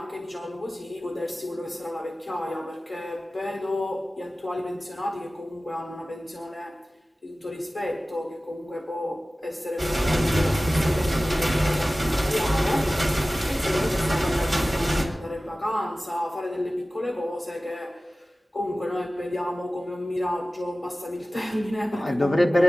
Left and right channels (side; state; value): both; normal; correlation 0.96